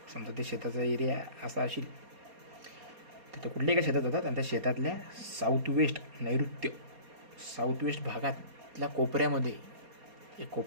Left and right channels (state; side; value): late; left; 4.2 ms